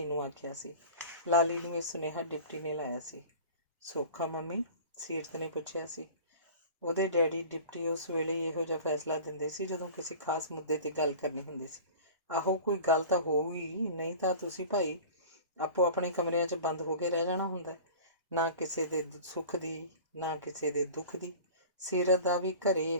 ਨੂੰ ਆਖਿਆ ਸੀ। ਲਾਲੀ ਨੂੰ ਇਹ ਸੁਨੇਹਾ ਡਿਪਟੀ ਨੇ ਲਾਇਆ ਸੀ। ਸੌਖਾ ਮੰਮੀ? ਸੀਰਤ ਨੇ ਪੁੱਛਿਆ ਸੀ। ਉਹਦੇ ਡੈਡੀ ਡਿਪਟੀ ਉਸ ਵੇਲੇ ਇਹੋ ਜਿਹਾ ਫੈਸਲਾ ਦਿੰਦੇ ਸੀ ਜਦੋਂ ਕਿਸੇ ਖਾਸ ਮੁੱਦੇ 'ਤੇ ਗੱਲ ਕਰਨੀ ਹੁੰਦੀ ਸੀ। ਆਹੋ ਕੋਈ ਗੱਲ ਤਾਂ ਹੋਊਗੀ, ਨਹੀਂ ਤਾਂ ਤੁਸੀਂ ਭਾਈ ਆਪੋ ਆਪਣੇ ਕਮਰਿਆਂ 'ਚ ਬੰਦ ਹੋ ਕੇ ਰਹਿ ਜਾਣਾ ਹੁੰਦਾ। ਨਾ ਕਿਸੇ ਦੇ ਸੁੱਖ ਦੀ ਨਾ ਕਿਸੇ ਦੇ ਦੁੱਖ ਦੀ। ਸੀਰਤ ਦਾ ਵੀ ਘਰੇ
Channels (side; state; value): both; inverted; correlation -0.39